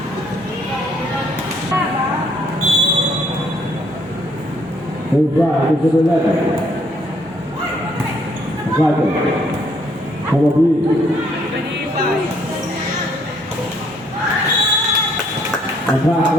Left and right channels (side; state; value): both; normal; correlation 0.67